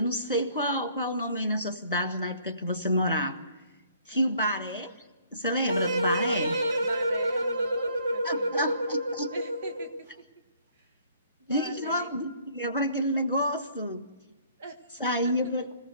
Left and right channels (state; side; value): inverted; both; correlation -0.61